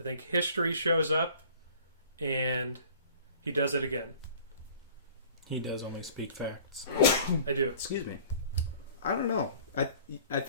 think history shows up, and he does it again. He does only speak facts. I do. Excuse me. I don't know. I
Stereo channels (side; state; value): both; inverted; correlation -0.49